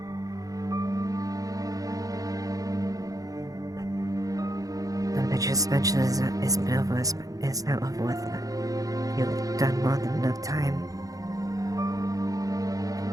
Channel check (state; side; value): late; left; 0.17 ms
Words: your suspension is been over, is now over with. You've done more than enough time.